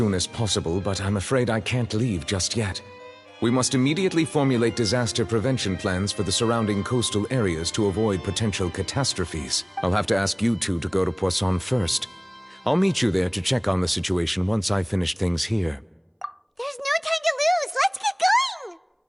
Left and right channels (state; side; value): identical; both; correlation 1.00